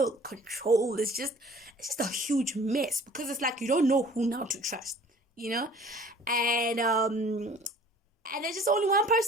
controlled. It's just a huge mess, because it's like you don't know who now to trust. And there's just only one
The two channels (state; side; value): normal; both; correlation 0.50